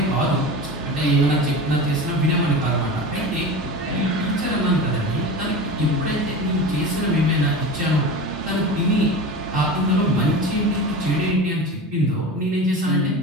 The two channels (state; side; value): normal; both; correlation 0.30